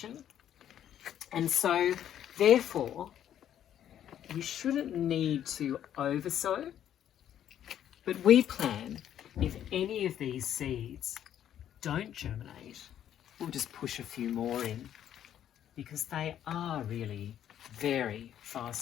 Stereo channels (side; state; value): right; quieter; 10.5 dB